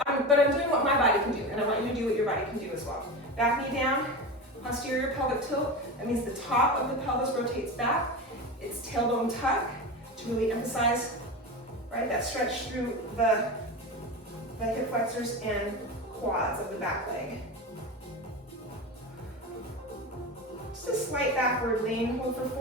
I'm doing what my body can do, and I want you to do what your body can do as well. Back knee down, posterior pelvic tilt. That means the top of the pelvis rotates back. It's tailbone tuck to really emphasize, right, that stretch through the hip flexors and quads of the back leg. Just a slight backward lean. Hold for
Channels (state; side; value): normal; both; correlation 0.24